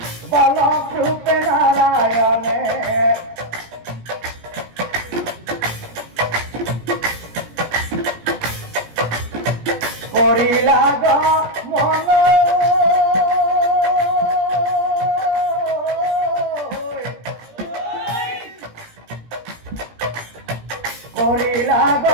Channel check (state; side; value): late; left; 17 ms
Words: বালক রূপে নারায়ণে করিলা মন করিলা